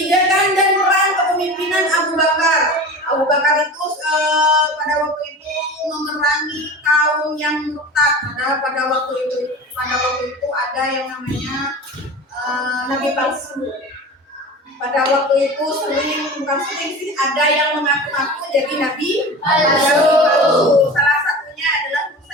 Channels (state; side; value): normal; both; correlation 0.33